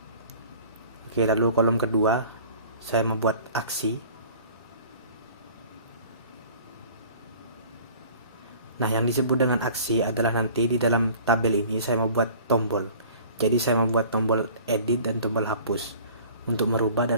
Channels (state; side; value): inverted; both; correlation -0.47